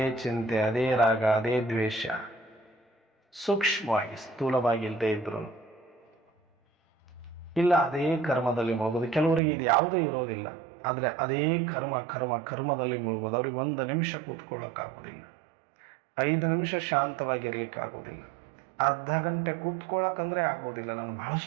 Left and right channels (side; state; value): left; drops out; at 9.4 s